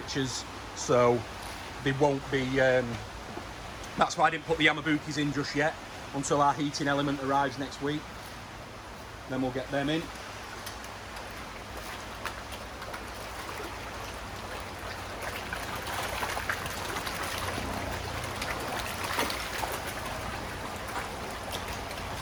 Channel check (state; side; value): identical; both; correlation 1.00